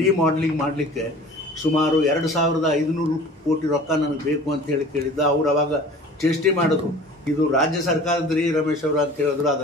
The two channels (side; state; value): both; normal; correlation 0.44